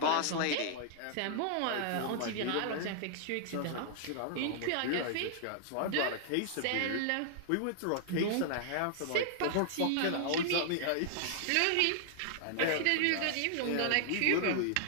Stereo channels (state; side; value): different; both; correlation -0.01